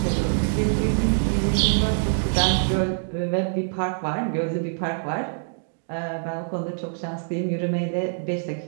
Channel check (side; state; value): left; silent; digital silence